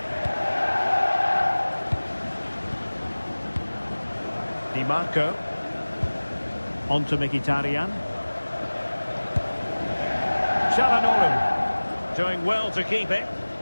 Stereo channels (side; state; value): both; inverted; correlation -1.00